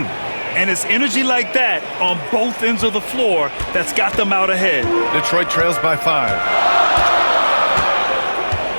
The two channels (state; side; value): inverted; both; correlation -1.00